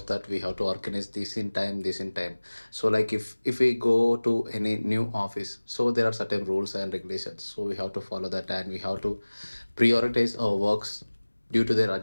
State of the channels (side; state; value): both; inverted; correlation -1.00